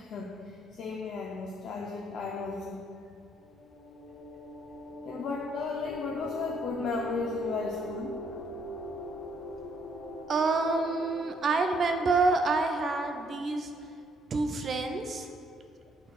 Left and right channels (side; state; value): both; normal; correlation 0.68